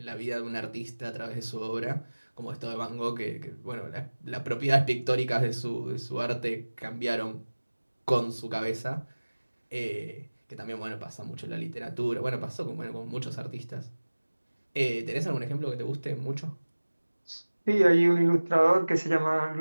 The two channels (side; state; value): both; inverted; correlation -1.00